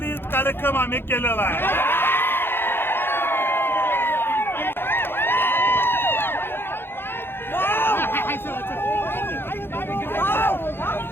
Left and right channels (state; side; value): late; right; 0.10 ms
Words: कार्यक्रम आम्ही केलेला आहे.